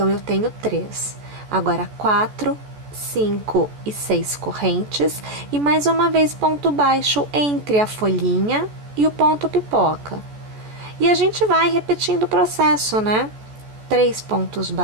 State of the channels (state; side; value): late; left; 14 ms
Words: eu tenho 3. Agora, 4, 5 e 6 correntes. E mais uma vez, ponto baixo entre a folhinha e o ponto pipoca. E a gente vai repetindo o processo, né? 3 pontos